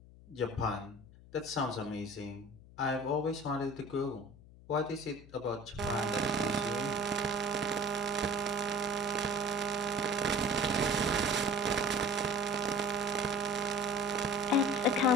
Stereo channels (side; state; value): left; noise; hum, 21 dB below the sound